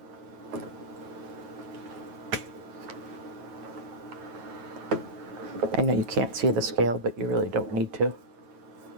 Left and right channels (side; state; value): left; late; 9.1 ms